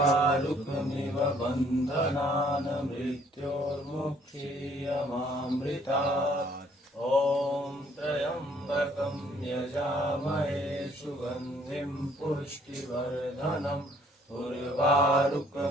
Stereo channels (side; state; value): both; normal; correlation 0.62